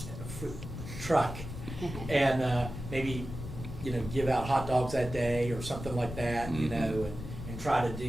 and maybe, give out hot dogs that day or something like that, Mm-hmm. and try to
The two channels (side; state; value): left; noise; rumble, 9 dB below the sound